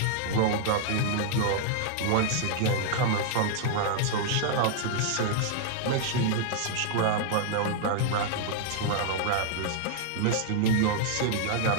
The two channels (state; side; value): different; both; correlation -0.01